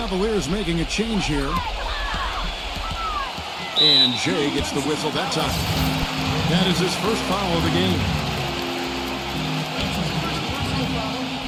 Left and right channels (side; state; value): both; identical; correlation 1.00